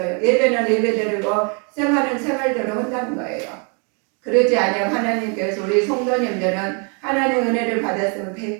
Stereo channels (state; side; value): quieter; left; 36.5 dB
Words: 예배는 예배대로 생활은 생활대로 한다는 거예요. 그러지 않으면 하나님께서 우리 성도님들은 하나님의 은혜를 받았으면